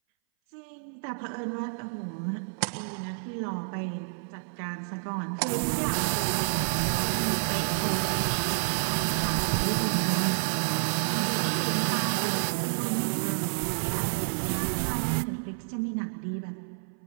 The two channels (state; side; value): silent; left; 58 dB below the other